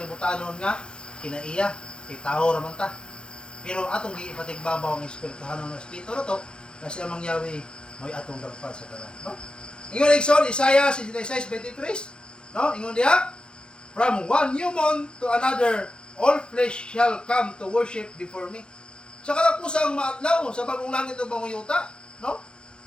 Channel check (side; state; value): right; late; 0.050 ms